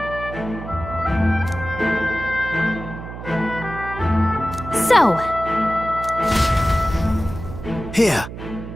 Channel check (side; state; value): right; noise; hum, 10 dB below the sound